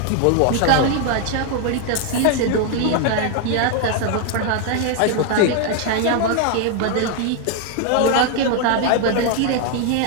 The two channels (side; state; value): both; different; correlation 0.00